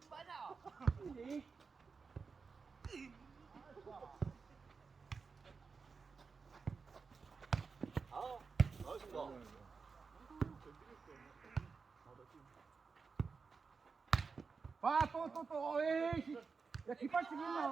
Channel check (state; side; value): quieter; left; 5.0 dB